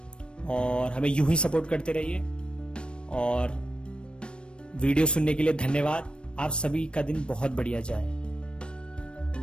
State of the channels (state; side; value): late; right; 0.056 ms